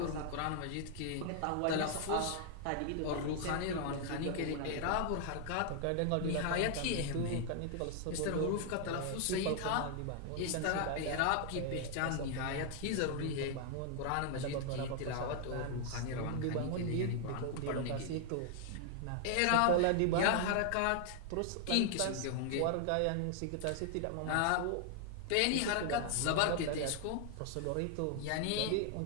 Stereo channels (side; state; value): both; different; correlation 0.00